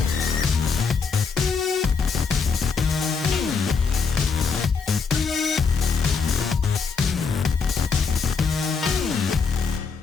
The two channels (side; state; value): right; quieter; 5.4 dB